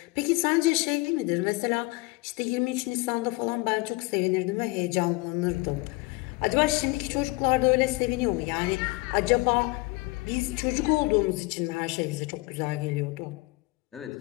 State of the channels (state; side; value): quieter; right; 24.6 dB